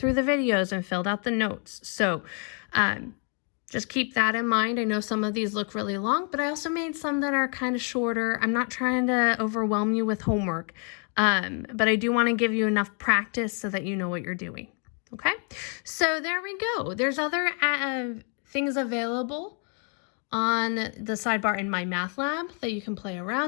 the videos and filled out the notes. So just keep that in mind. I know some of these look really long, but I also made some that are kind of shorter. I'm not trying to overwhelm you with homework, but I do want to give you enough practice so that you know what you're doing. Okay, so there we go. There's other things available on the sidebar in MyMathLab that you can play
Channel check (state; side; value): quieter; right; 39.9 dB